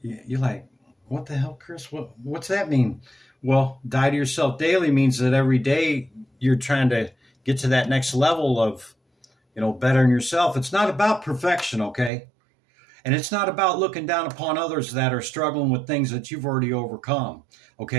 you're like, what the hell, Chris? What's that mean? Well, die to yourself daily means that every day you're trying to get to that next level of, you know, bettering yourself. It's not about perfection, okay? And it's not about looking down upon others that are struggling with things that you've already overcome,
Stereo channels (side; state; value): left; drops out; at 12.1 s